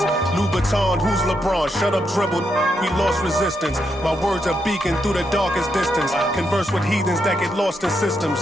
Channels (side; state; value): both; normal; correlation 0.81